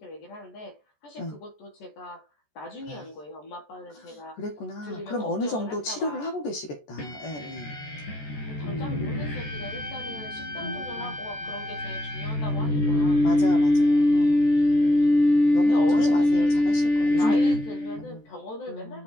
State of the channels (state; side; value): late; right; 14 ms